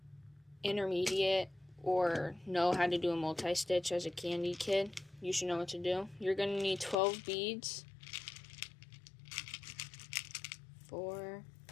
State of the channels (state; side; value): drops out; right; at 7.0 s